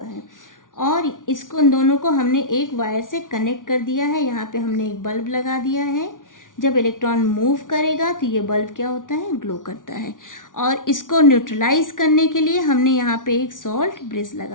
है और इसको इन दोनों को हमने एक वायर से कनेक्ट कर दिया है। यहाँ पे हमने एक बल्ब लगा दिया है। जब इलेक्ट्रॉन मूव करेगा तो ये बल्ब क्या होता है, ग्लो करता है। और इसको न्यूट्रलाइज करने के लिए हमने यहाँ पे एक सॉल्ट ब्रिज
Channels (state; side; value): late; right; 0.88 ms